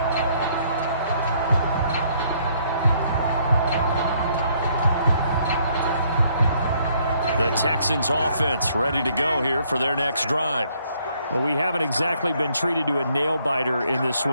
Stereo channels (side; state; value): both; inverted; correlation -0.67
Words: The Texans offense ready to go here for their next drive. Well, we haven't exactly been treated to a nail-biter in this